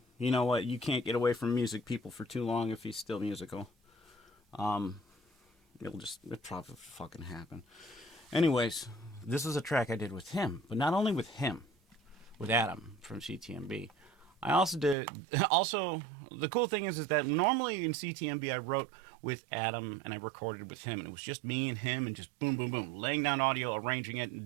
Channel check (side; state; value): left; drops out; at 15.0 s